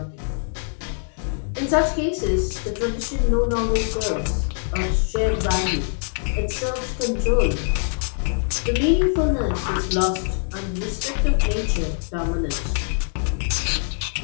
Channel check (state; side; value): silent; right; 63 dB below the other